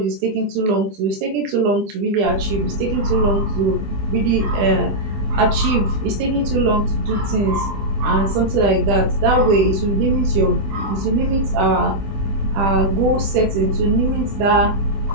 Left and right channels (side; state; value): left; late; 20 ms